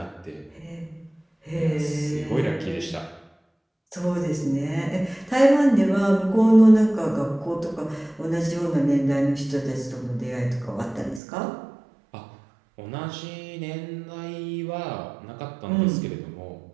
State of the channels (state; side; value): drops out; left; at 11.2 s